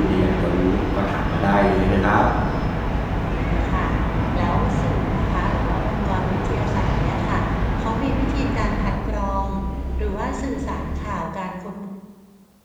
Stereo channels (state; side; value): identical; both; correlation 1.00